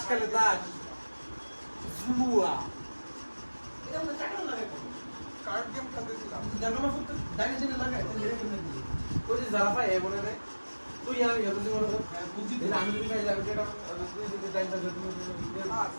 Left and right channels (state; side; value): inverted; both; correlation -1.00